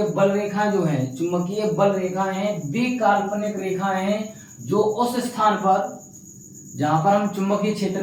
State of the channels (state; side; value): identical; both; correlation 1.00